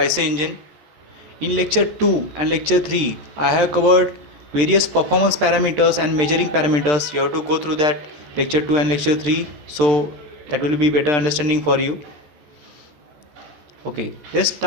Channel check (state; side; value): late; left; 13 ms